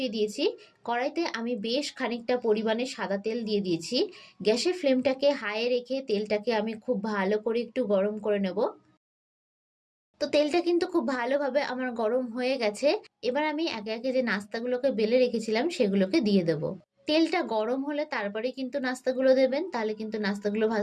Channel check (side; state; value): both; identical; correlation 1.00